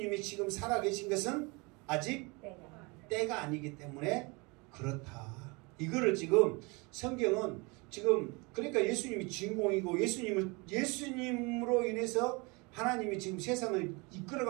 지금 살아계신 것은 아직 때가 아니기 때문에 그렇다. 이거를 지금 성경은 지금 그러니까 예수님이 주인공이고 예수님으로 인해서 하나님이 지금 세상을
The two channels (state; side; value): quieter; left; 27.9 dB